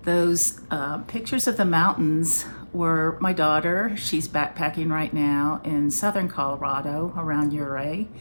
Those pictures of the mountains were my daughter. She's backpacking right now in southern Colorado around Uray,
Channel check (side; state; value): both; inverted; correlation -1.00